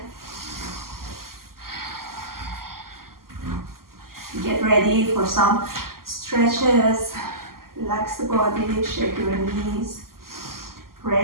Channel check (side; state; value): left; late; 0.92 ms